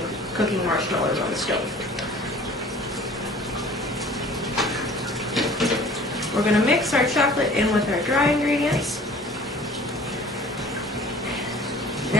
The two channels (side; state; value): both; normal; correlation 0.48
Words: cooking marshmallows on the stove. We're going to mix our chocolate in with our dry ingredients.